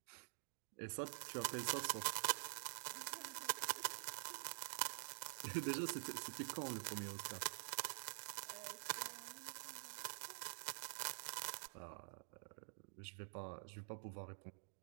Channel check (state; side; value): silent; left; digital silence